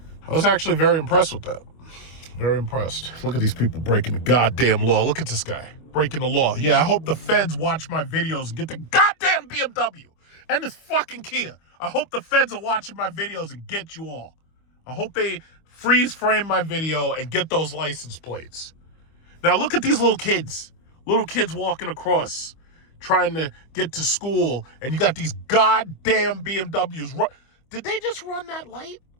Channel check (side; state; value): right; late; 25 ms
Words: I was actually very impressed with that. Very impressed. Look at these people breaking the goddamn law. Look at this guy breaking the law. Yeah, I hope the feds watch my videos and get the goddamn BMW and this fucking Kia. I hope the feds are watching my videos and get you all. I hope they freeze frame my video and get those license plates. Now look at these little kids walking across trying to get to school, and you got these goddamn BMWs. Did they just run that light?